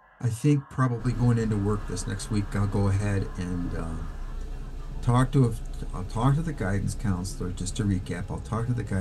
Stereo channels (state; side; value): identical; both; correlation 1.00